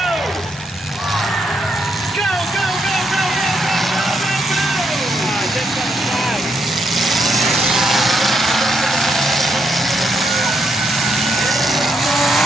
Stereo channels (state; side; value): normal; both; correlation 0.78